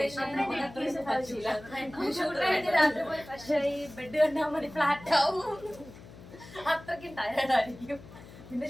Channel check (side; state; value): left; noise; hum, 18 dB below the sound